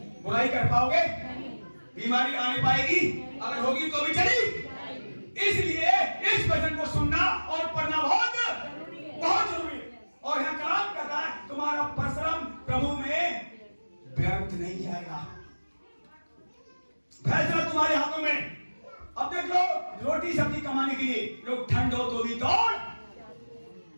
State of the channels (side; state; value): both; inverted; correlation -1.00